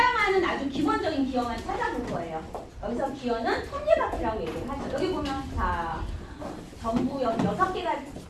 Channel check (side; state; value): both; identical; correlation 1.00